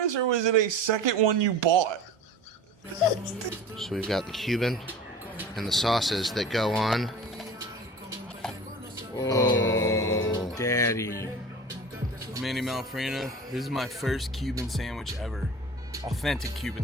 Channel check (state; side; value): normal; both; correlation 0.38